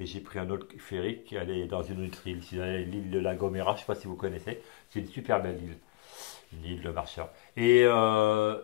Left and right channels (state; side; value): quieter; right; 19.5 dB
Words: j'ai pris un autre ferry qui allait dans une autre île. Je suis allé à l'île de La Gomera, je ne sais pas si vous connaissez, c'est une super belle île, une île de marcheurs. Et